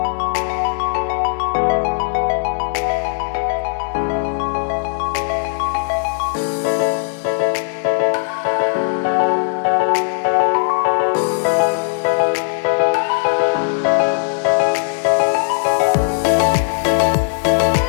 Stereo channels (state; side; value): silent; right; digital silence